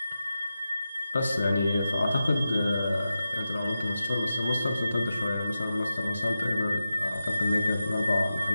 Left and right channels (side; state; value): both; inverted; correlation -0.92